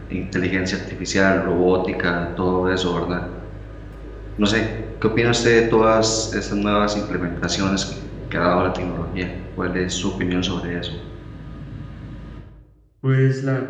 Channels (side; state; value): both; identical; correlation 1.00